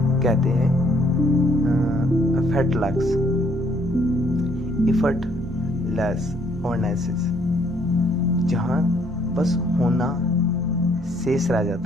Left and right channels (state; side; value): normal; both; correlation 0.65